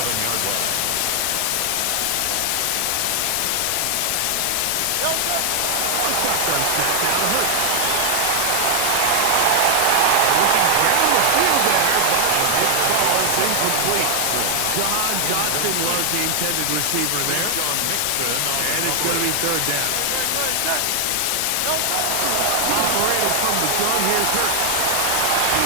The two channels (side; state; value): both; different; correlation 0.00